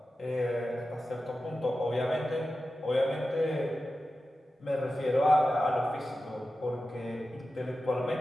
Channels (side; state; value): both; normal; correlation 0.93